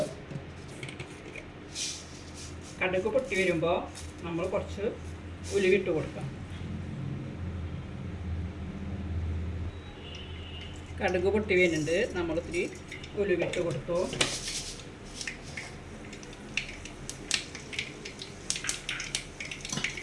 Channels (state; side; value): identical; both; correlation 1.00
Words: കടുക് പൊട്ടി വരുമ്പോൾ നമ്മൾ കുറച്ച് ഉലുവിട്ട് കൊടുക്കാം. കടുക് പൊട്ടി വരുന്നുണ്ട്, നമ്മൾ ഇത്തിരി ഉലുവിട്ട് കൊടുത്തു.